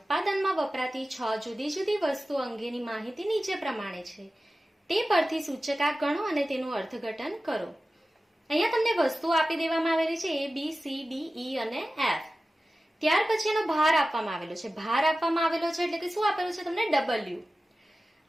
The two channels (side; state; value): both; normal; correlation 0.95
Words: વપરાતી 6 જુદી જુદી વસ્તુઓ અંગેની માહિતી નીચે પ્રમાણે છે. તે પરથી સૂચકાંક ગણો અને તેનું અર્થઘટન કરો. અહીંયા તમને વસ્તુઓ આપી દેવામાં આવેલી છે A, B, C, D, E અને F. ત્યાર પછી એનો ભાર આપવામાં આવેલો છે. ભાર આપવામાં આવેલો છે એટલે કે શું આપેલું છે તમને? W.